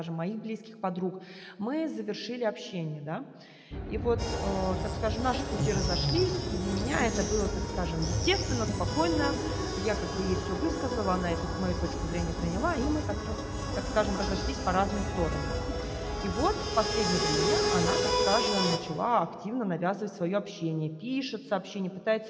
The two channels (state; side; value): identical; both; correlation 1.00